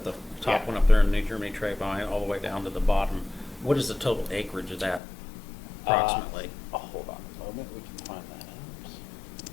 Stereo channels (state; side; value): drops out; right; at 5.0 s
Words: the top Yeah. one up there in New Germany Treybine, all the way down to the bottom. What is the total acreage of that approximately? Hold on a moment, we can find that out.